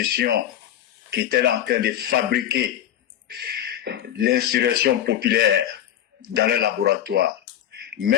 qui était en train de fabriquer l'insurrection populaire dans le laboratoire.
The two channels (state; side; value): quieter; right; 11.0 dB